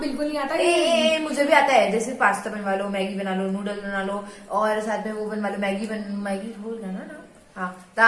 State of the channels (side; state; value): both; identical; correlation 1.00